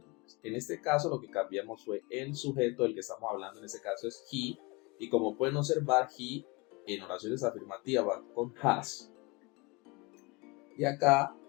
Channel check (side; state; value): right; quieter; 26.8 dB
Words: En este caso lo que cambiamos fue el sujeto del que estamos hablando, en este caso es he, y como pueden observar, he en oraciones afirmativas va con has. Y acá